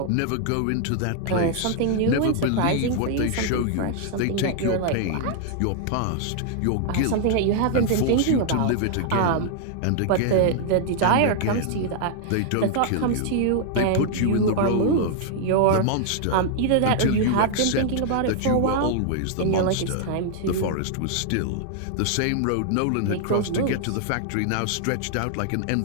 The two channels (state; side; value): different; both; correlation 0.00